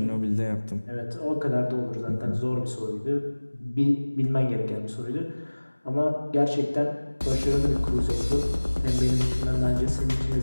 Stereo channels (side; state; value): both; inverted; correlation -1.00